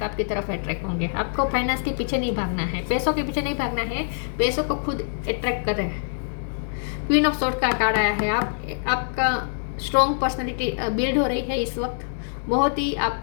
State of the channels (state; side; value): silent; right; digital silence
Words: आपकी तरफ अट्रैक्ट होंगे। आपको फाइनेंस के पीछे नहीं भागना है, पैसों के पीछे नहीं भागना है, पैसों को खुद अट्रैक्ट कर रहे हैं। क्वीन ऑफ सोर्ड का कार्ड आया है। आपका स्ट्रॉन्ग पर्सनैलिटी बिल्ड हो रही है इस वक्त। बहुत ही आप